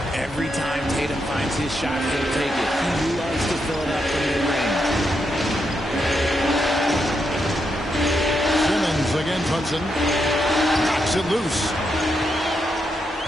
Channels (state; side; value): normal; both; correlation 0.82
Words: Every time Tatum finds his shot, he'll take it. He loves to fill it up from mid-range. Simmons against Hudson. Knocks it loose.